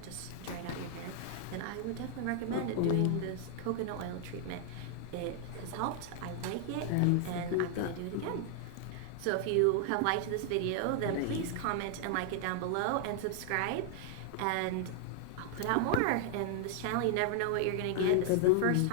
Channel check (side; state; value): both; different; correlation 0.00